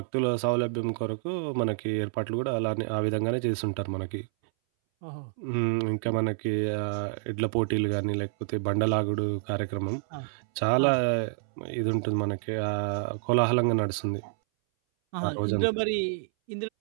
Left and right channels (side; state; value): left; silent; 59 dB below the other